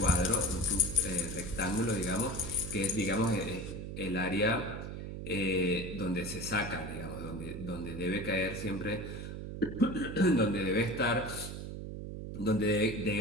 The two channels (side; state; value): right; noise; hum, 7 dB below the sound